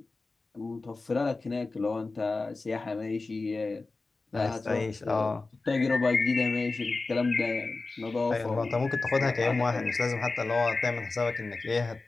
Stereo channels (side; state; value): right; quieter; 3.6 dB